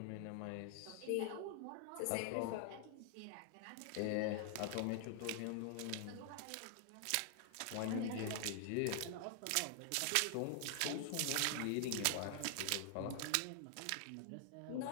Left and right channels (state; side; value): different; both; correlation 0.00